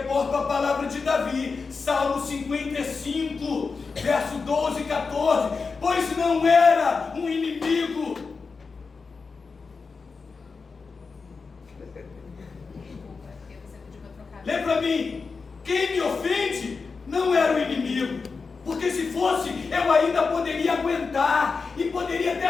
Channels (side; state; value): right; quieter; 4.7 dB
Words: à palavra de Davi, Salmo 55, verso 12 e 14. Pois não era um inimigo. Lê para mim, quem me ofende não era o inimigo, porque se fosse, eu ainda poderia aguentar, e poderia